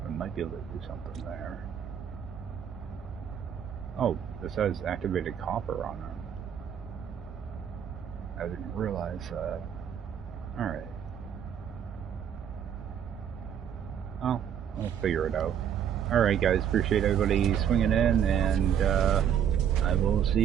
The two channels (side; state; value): left; quieter; 8.8 dB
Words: I might be able to do something there. Oh, this has activated copper on it. I didn't realize that. Alright. Oh, I'll figure it out. Alright guys, appreciate everybody swinging in, and I will see